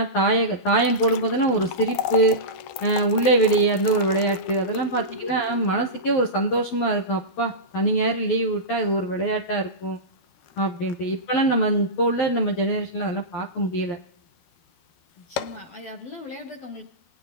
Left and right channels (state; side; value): late; right; 12 ms